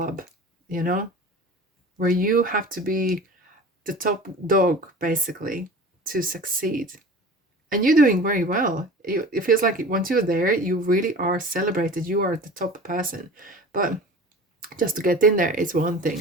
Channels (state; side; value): normal; both; correlation 0.38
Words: you know, where you have to be the top dog basically to succeed. And you're doing very well. It feels like once you're there, you really are celebrated. You are the top person. But just to get in there is one